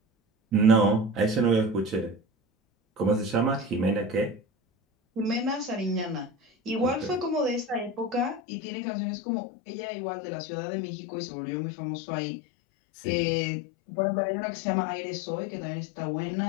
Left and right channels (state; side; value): drops out; right; at 8.4 s